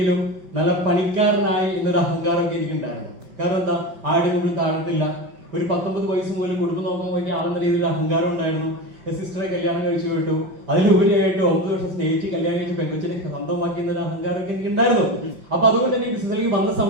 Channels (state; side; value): late; left; 5.1 ms